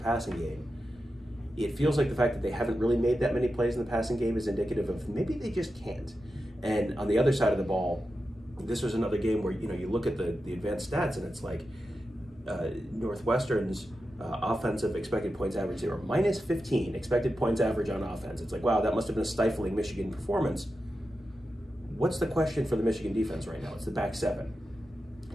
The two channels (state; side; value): normal; both; correlation 0.90